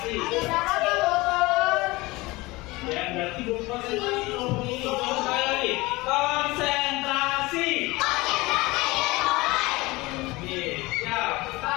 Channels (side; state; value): right; quieter; 21.7 dB